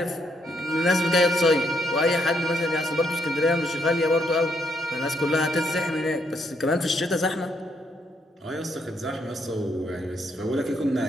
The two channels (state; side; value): normal; both; correlation 0.74